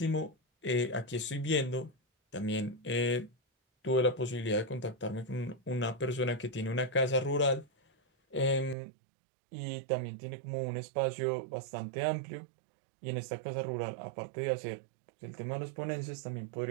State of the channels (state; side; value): drops out; left; at 8.8 s